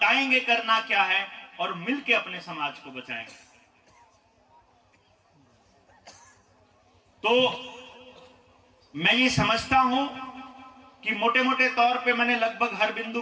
करना क्या है और मिलके अपने समाज को बचाएंगे। तो मैं ये समझता हूं कि मोटे मोटे तौर पे मैंने लगभग हर बिंदु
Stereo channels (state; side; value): identical; both; correlation 1.00